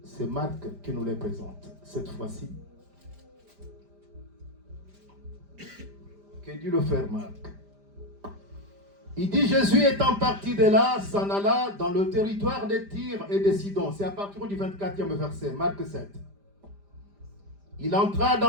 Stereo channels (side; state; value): left; late; 5.0 ms